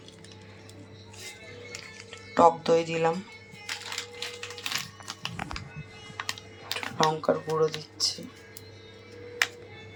টক দই দিলাম, লঙ্কার গুঁড়ো দিচ্ছি,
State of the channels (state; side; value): identical; both; correlation 1.00